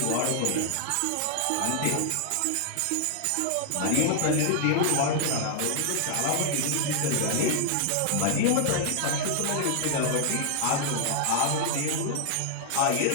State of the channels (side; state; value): both; different; correlation 0.00